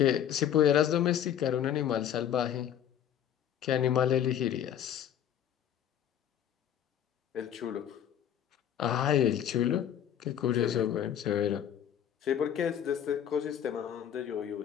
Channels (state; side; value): quieter; right; 9.9 dB